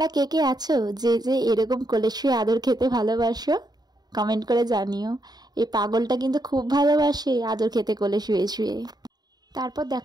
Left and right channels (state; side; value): late; left; 0.20 ms